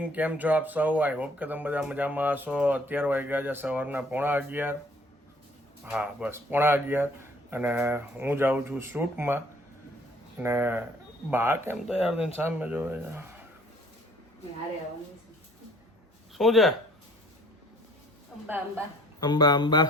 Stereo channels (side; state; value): both; normal; correlation 0.57